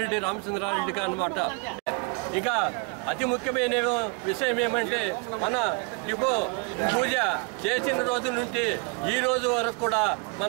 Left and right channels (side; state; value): left; quieter; 31.7 dB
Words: రామచంద్రారెడ్డి గారు అన్నమాట. ఇక అతి ముఖ్యమైన విషయం ఏమంటే మన డిపో పూజ చేసిన రోజు నుండి ఈ రోజు వరకు కూడా